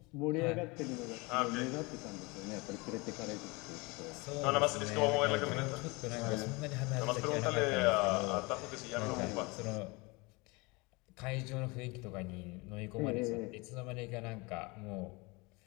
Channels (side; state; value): right; quieter; 26.1 dB